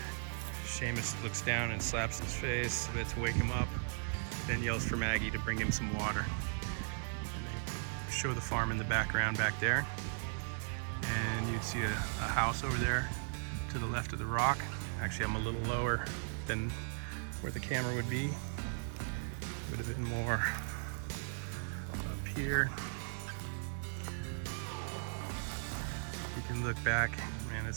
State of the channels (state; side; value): silent; left; digital silence